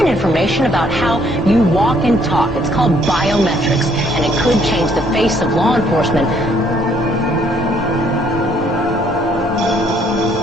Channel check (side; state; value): both; normal; correlation 0.66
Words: information about how you walk and talk. It's called biometrics, and it could change the face of law enforcement.